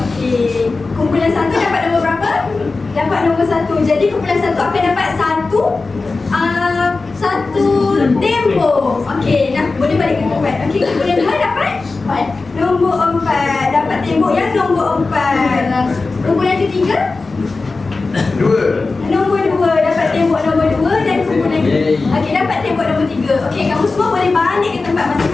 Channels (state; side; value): quieter; right; 3.8 dB